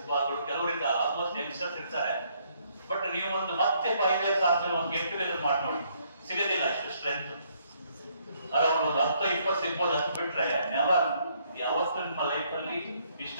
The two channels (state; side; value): inverted; both; correlation -0.69